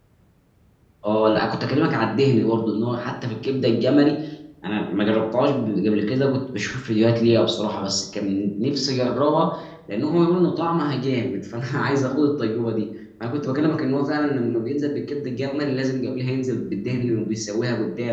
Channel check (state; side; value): identical; both; correlation 1.00